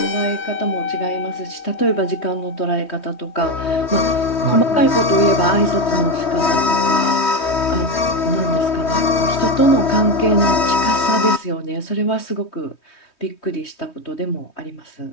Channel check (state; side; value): late; right; 3.2 ms